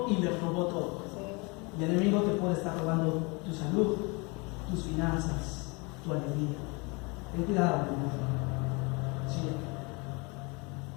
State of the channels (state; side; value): quieter; right; 29.2 dB